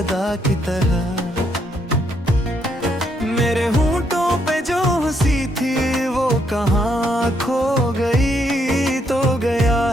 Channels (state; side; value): normal; both; correlation 0.74